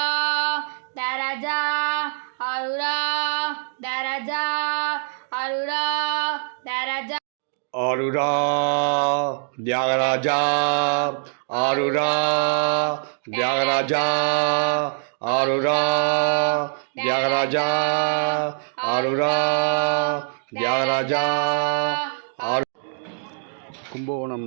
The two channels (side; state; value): left; silent; digital silence